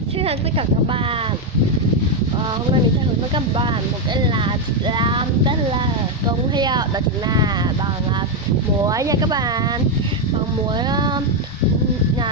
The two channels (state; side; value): normal; both; correlation 0.04